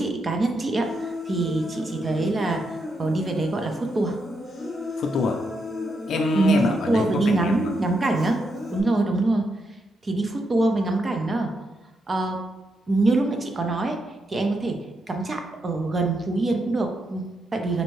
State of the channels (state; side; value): normal; both; correlation 0.81